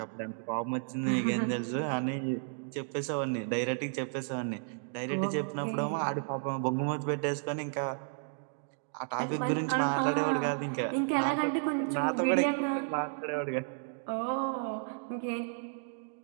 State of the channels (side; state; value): left; silent; digital silence